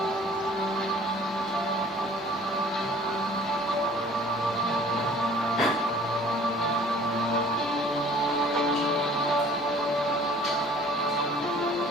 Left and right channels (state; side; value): normal; both; correlation 0.52